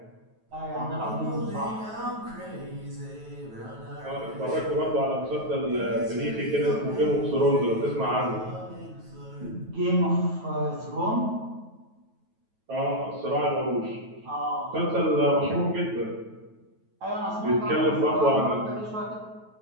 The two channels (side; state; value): left; late; 9.2 ms